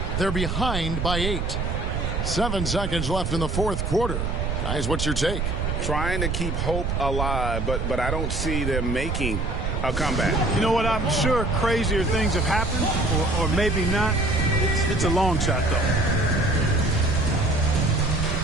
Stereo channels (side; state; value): right; noise; rumble, 1 dB below the sound